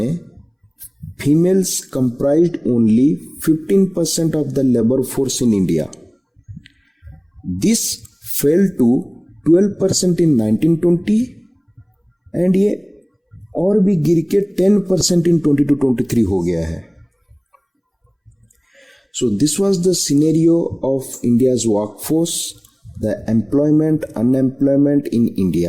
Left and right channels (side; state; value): both; identical; correlation 1.00